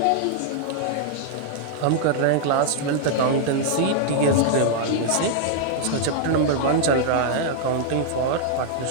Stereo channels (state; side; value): different; both; correlation -0.01